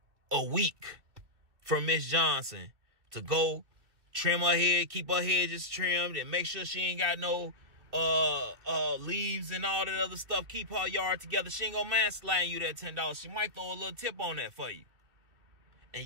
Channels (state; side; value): late; left; 2.4 ms